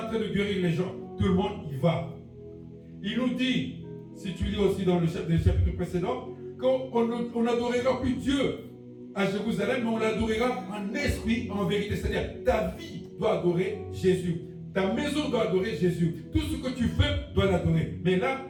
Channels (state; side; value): identical; both; correlation 1.00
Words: train de guérir les gens. Tout le monde y va. Il nous dit, si tu lis aussi dans le chapitre précédent, qu'on n'adorera plus Dieu à Jérusalem, mais on l'adorera en esprit, en vérité. C'est-à-dire, ta vie doit adorer Jésus. Ta maison doit adorer Jésus. Tout ce que tu fais doit l'adorer. Mais là,